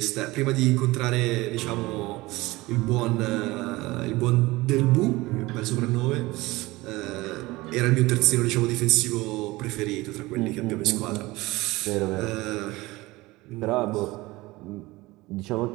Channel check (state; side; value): quieter; left; 20.6 dB